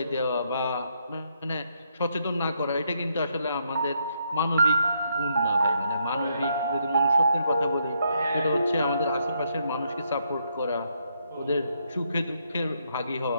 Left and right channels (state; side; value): inverted; both; correlation -0.75